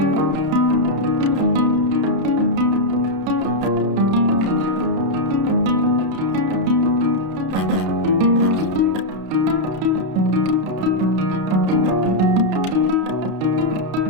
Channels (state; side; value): late; left; 31 ms